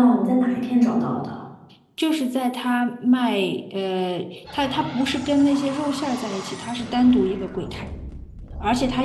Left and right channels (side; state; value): both; identical; correlation 1.00